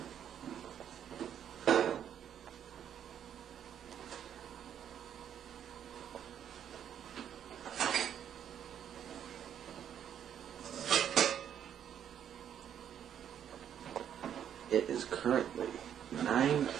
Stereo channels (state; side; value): quieter; left; 9.3 dB